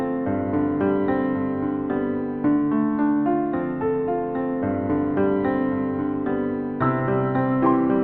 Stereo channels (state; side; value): identical; both; correlation 1.00